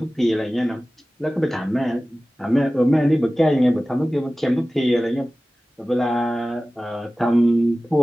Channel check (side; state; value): both; normal; correlation 0.97